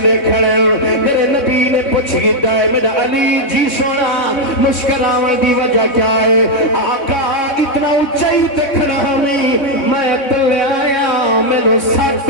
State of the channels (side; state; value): right; late; 3.6 ms